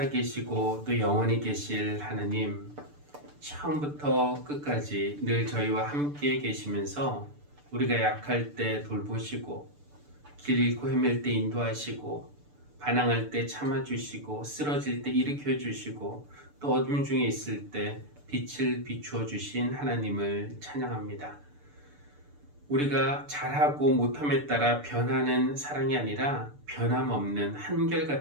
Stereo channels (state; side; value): late; left; 6.8 ms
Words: 또 영원히 계실 하나님, 처음부터 끝까지 늘 저희와 함께 계시면서 우리가 약할 때 돌보시고 길 잃고 헤맬 때 인도하시고 반항할 때 참아주시고 쓰러질 때 일으켜주시고 또 어둠 중에 있을 때 빛을 비추어 주신 하나님을 찬양합니다. 우리가 잘하고 못함에 따라 변하는 사랑이 아니라 변함없는